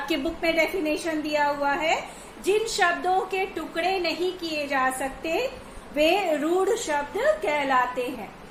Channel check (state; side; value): identical; both; correlation 1.00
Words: बुक में डेफिनेशन दिया हुआ है, जिन शब्दों के टुकड़े नहीं किए जा सकते वे रूढ़ शब्द कहलाते हैं।